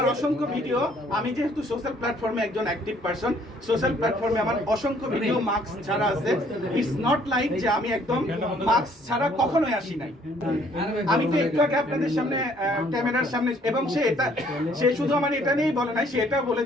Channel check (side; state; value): both; normal; correlation 0.62